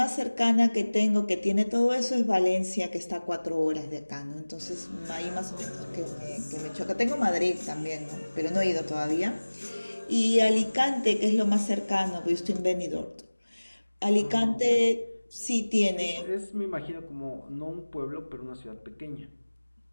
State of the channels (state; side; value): inverted; both; correlation -1.00